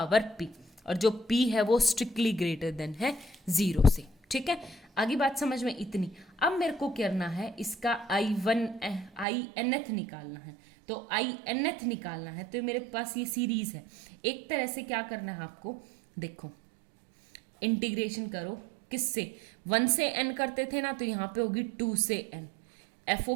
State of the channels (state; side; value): drops out; left; at 9.2 s